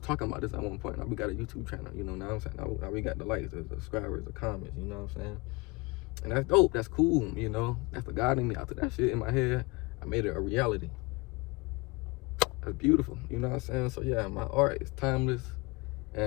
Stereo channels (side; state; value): right; quieter; 26.2 dB